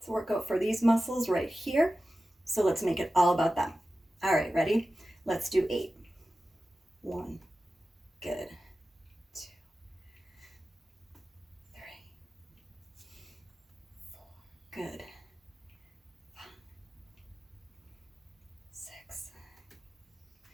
a workout for these muscles right here. So let's make it all about them. All right, ready? Let's do 8. 1, good. 2, 3, 4, good. 5, 6,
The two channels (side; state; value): both; normal; correlation 0.94